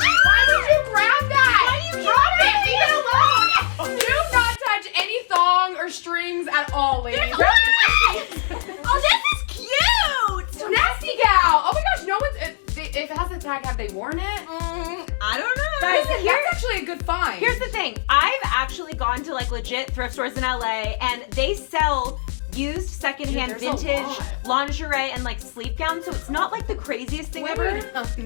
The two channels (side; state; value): right; silent; digital silence